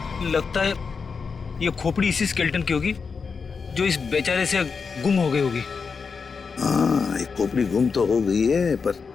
लगता है ये खोपड़ी इसी स्केलेटन की होगी जो इस बेचारे से गुम हो गई होगी। हाँ, एक खोपड़ी गुम तो हो गई है, पर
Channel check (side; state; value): right; quieter; 5.3 dB